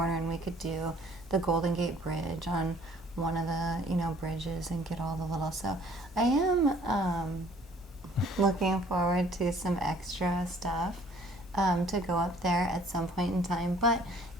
and we could do the Golden Gate Bridge on one of the, you know, bridges and get all the little. So I am looking forward to some extra stuff to go up there at some point in time, but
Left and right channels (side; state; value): both; normal; correlation 0.56